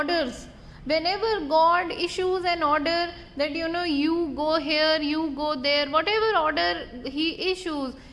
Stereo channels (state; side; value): identical; both; correlation 1.00